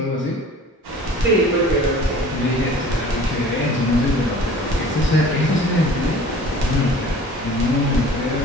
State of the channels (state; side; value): normal; both; correlation 0.46